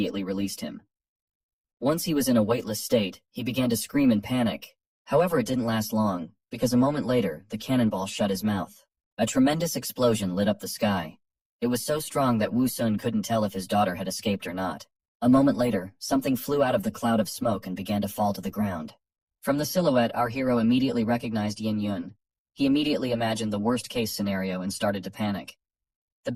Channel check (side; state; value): both; identical; correlation 1.00